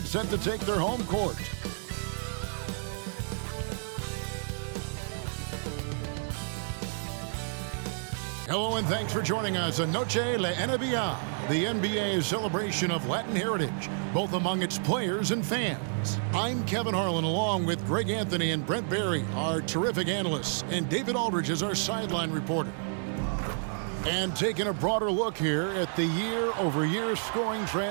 set to take their home court. Hello and thanks for joining us on Noche la NBA, the NBA's celebration of Latin heritage, both among its players and fans. I'm Kevin Harlan along with Greg Anthony and Brent Barry, our terrific analysts, and David Aldridge is our sideline reporter. And taking a broader look here at the year-over-year scoring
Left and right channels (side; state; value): left; silent; 58 dB below the other